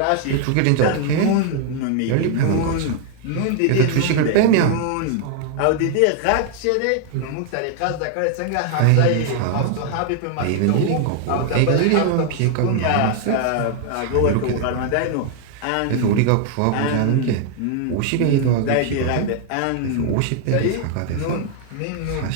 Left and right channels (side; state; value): both; different; correlation 0.00